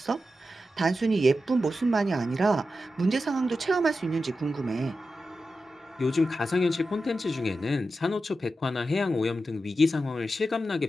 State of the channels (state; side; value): normal; both; correlation 0.91